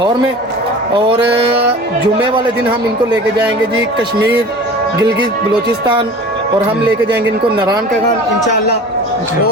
में और जुम्मे वाले दिन हम इनको लेके जाएंगे जी कश्मीर गिलगित बलूचिस्तान और हम लेके जाएंगे इनको नारायण का गान इंशाल्लाह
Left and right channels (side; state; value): both; normal; correlation 0.40